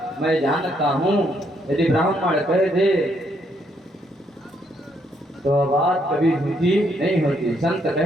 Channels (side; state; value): both; normal; correlation 0.73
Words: मैं जानता हूँ यदि ब्राह्मण कह दे तो बात कभी झूठी नहीं होती, संत